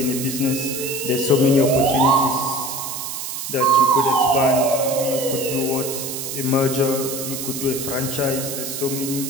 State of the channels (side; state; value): right; noise; hiss, 6 dB below the sound